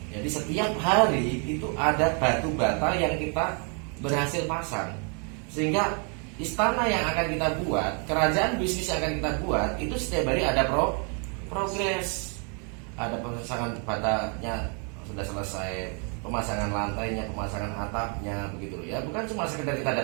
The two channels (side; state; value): left; quieter; 37.9 dB